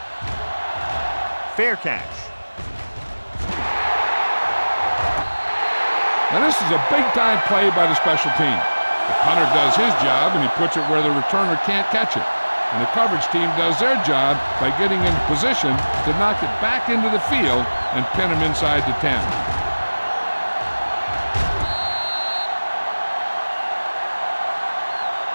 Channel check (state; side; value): inverted; both; correlation -1.00